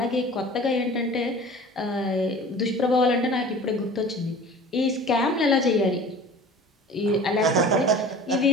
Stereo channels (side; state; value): both; normal; correlation 0.42